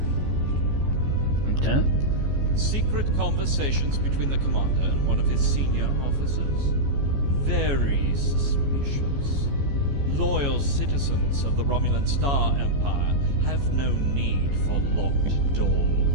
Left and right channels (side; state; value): left; late; 14 ms